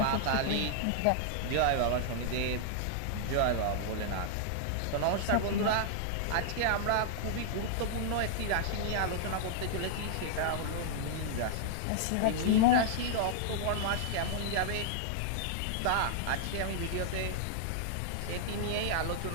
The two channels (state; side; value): different; both; correlation -0.01